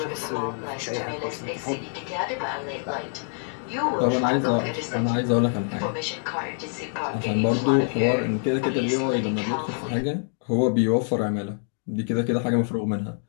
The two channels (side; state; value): right; silent; 60 dB below the other